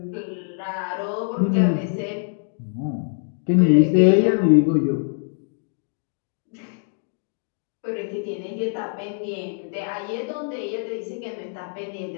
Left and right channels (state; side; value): silent; right; digital silence